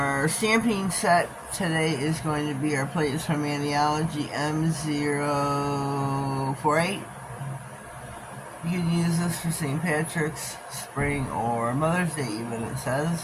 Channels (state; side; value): identical; both; correlation 1.00